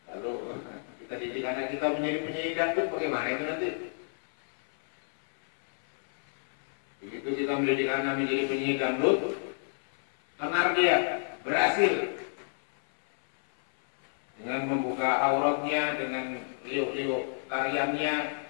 Lalu kita didik anak kita menjadi penyanyi dangdut, bagaimana itu nanti? Begitu kita mendidik anak menjadi penyanyi dangdut, tenar dia berhasil dengan membuka auratnya, dengan liuk-liuk tariannya.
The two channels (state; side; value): silent; right; 56 dB below the other